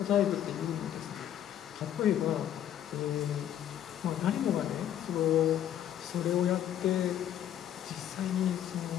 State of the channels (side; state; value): right; quieter; 10.7 dB